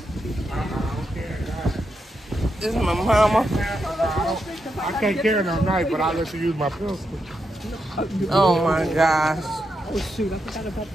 This is my mama. I can't carry no knife, but I'll let you use my pistol. Oh my gosh. Oh shoot, I forgot about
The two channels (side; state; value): both; normal; correlation 0.84